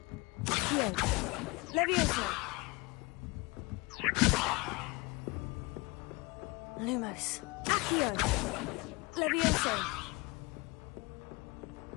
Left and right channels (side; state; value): right; quieter; 25.8 dB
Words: Levioso. Lumos. Accio. Levioso.